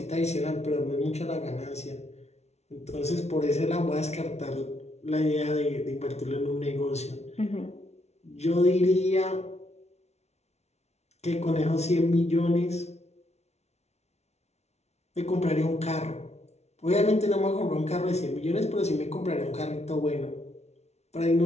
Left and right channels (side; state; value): right; late; 0.31 ms